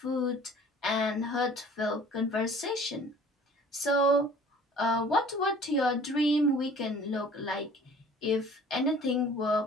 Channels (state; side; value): normal; both; correlation 0.50